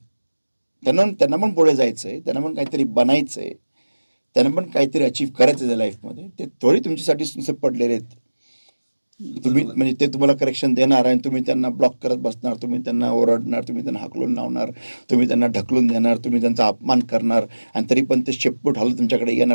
त्यांना पण पुढे जायचंय, त्यांना पण काहीतरी बनायचंय, त्यांना पण काहीतरी अचीव्ह करायचं आहे लाईफमध्ये. ते थोडी तुमच्यासाठी नुसते पडलेले आहेत. तुम्ही म्हणजे ते तुम्हाला करेक्शन देणार आणि तुम्ही त्यांना ब्लॉक करत बसणार, तुम्ही त्यांना ओरडणार, तुम्ही त्यांना हाकलून लावणार, तुम्ही त्यांना ढकलून देणार, तुम्ही त्यांचा अपमान करणार, आणि तरी पण ते शेपूट हलत तुमच्याकडे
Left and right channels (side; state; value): both; inverted; correlation -1.00